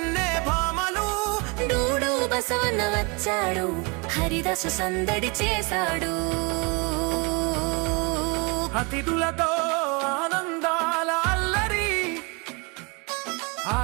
భామలు. డూడు బసవన్న వచ్చాడు హరిదాసు సందడి చేశాడు. అతిథులతో ఆనందాల అల్లరి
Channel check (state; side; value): quieter; left; 30.3 dB